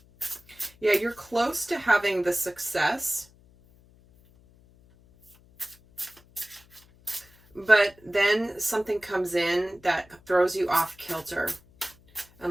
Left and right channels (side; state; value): left; noise; hum, 28 dB below the sound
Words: Yeah, you're close to having the success, but then something comes in that throws you off kilter.